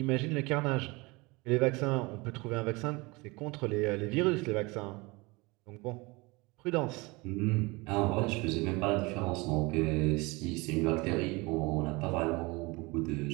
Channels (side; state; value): left; quieter; 24.9 dB